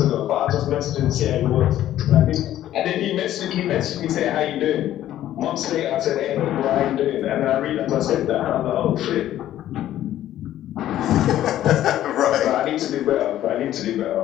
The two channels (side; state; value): right; quieter; 12.7 dB